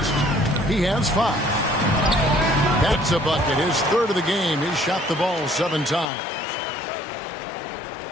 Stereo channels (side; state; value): right; drops out; at 6.1 s